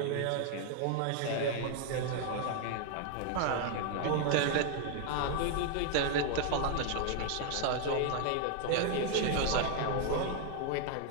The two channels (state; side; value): different; both; correlation 0.00